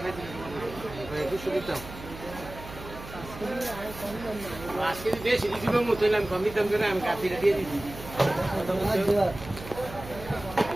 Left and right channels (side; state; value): right; noise; hum, 14 dB below the sound